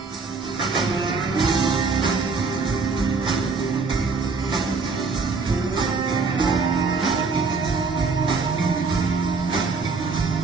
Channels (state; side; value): quieter; left; 4.5 dB